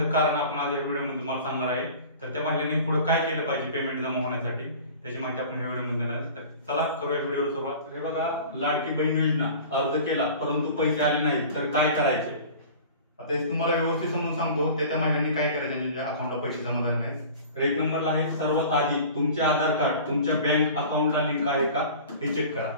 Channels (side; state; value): both; inverted; correlation -0.41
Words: कारण आपण आज या व्हिडिओमध्ये तुम्हाला सांगणार आहे। तर त्या महिलांनी पुढे काय केलं पाहिजे पेमेंट जमा होण्यासाठी, त्याची माहिती आपण या व्हिडिओमध्ये देणार आहे। तर चला करूया व्हिडिओला सुरुवात। हे बघा, लाडकी बहीण योजना अर्ज केला परंतु पैसे आले नाहीत तर काय करायचे, आता हे तुम्हाला व्यवस्थित समजून सांगतो। त्या महिलांनी काय करायचे ज्यांच्या अकाउंटला पैसे जमा झाले नाहीत। तर एक नंबरला आहे, सर्वात आधी तुमचे आधार कार्ड तुमच्या बँक अकाउंटला लिंक आहे का हे चेक करा।